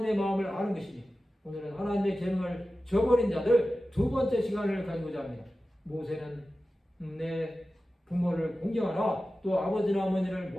마음을 아는 것이니 오늘은 하나님의 계명을 저버린 자들 두 번째 시간을 가지고자 합니다. 모세는 내 부모를 공경하라 또 아버지나 어머니를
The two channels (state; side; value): normal; both; correlation 0.94